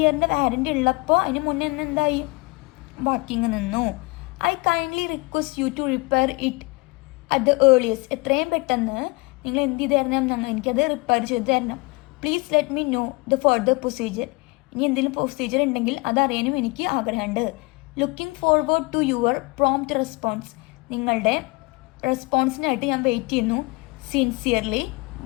വാറണ്ടി ഉള്ളപ്പോൾ അതിന് മുന്നേ എന്തായി? വർക്കിംഗ് നിന്നു. I kindly request you to repair it at the earliest. എത്രയും പെട്ടെന്ന് നിങ്ങൾ എന്ത് ചെയ്ത് തരണം? എനിക്കത് റിപ്പയർ ചെയ്ത് തരണം. Please let me know the further procedure. ഇനി എന്തെങ്കിലും പ്രൊസീജിയർ ഉണ്ടെങ്കിൽ അതറിയാനും എനിക്ക് ആഗ്രഹമുണ്ട്. Looking forward to your prompt response. നിങ്ങളുടെ റെസ്പോൺസിനായിട്ട് ഞാൻ വെയിറ്റ് ചെയ്യുന്നു. സിൻസിയർലി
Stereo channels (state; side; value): quieter; right; 26.0 dB